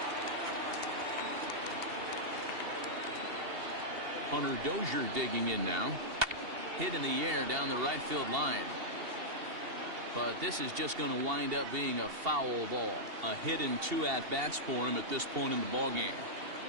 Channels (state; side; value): late; left; 2.7 ms